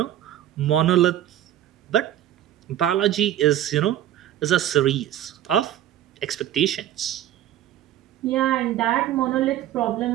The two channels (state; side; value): quieter; left; 12.1 dB